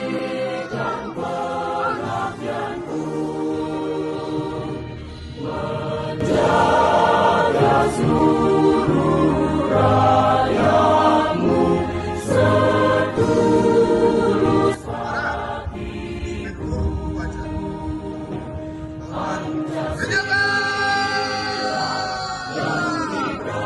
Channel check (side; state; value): both; identical; correlation 1.00